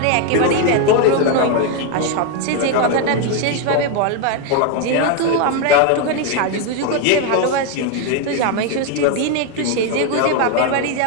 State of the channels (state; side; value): different; both; correlation 0.01